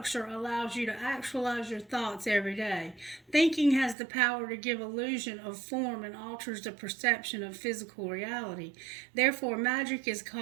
allows you to actualize your thoughts every day. Thinking has the power to give illusion of form and alters the perception of physical reality. Therefore, magic is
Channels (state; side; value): drops out; left; at 4.0 s